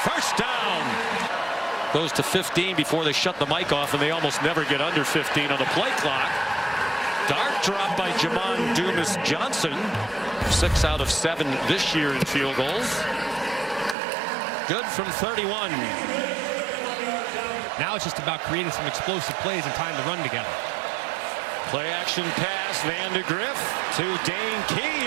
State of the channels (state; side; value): drops out; left; at 14.0 s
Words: First down. Goes to 15 before they shut the mic off, and they almost never get under 15 on the play clock. Dart dropped by Jamon Dumas-Johnson. 6 out of 7 this year in field goals. Good from 31. Now it's just about creating some explosive plays and tying the run together. Play action pass, Vandegrift to Dane